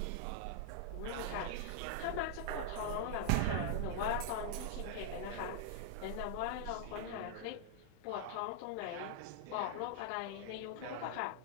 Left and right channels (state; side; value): different; both; correlation -0.01